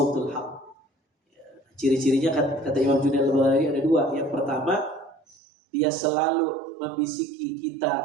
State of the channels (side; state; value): left; drops out; at 5.4 s